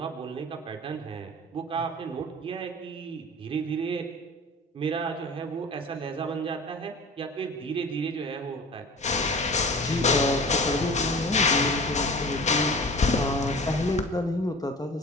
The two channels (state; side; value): normal; both; correlation 0.39